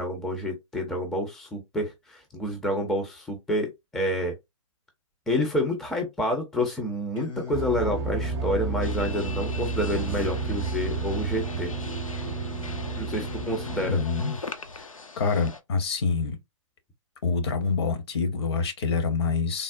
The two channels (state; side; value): normal; both; correlation -0.01